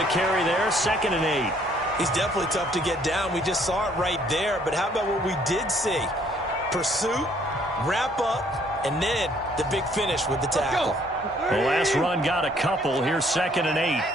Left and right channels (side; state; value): both; normal; correlation 0.63